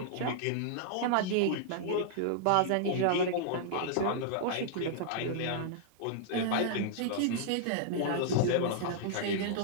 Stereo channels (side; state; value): both; different; correlation -0.01